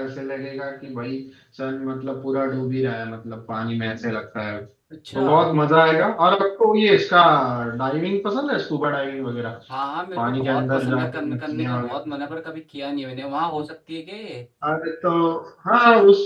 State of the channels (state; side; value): identical; both; correlation 1.00